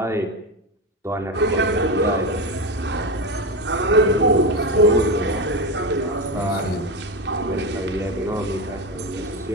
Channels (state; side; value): normal; both; correlation 0.16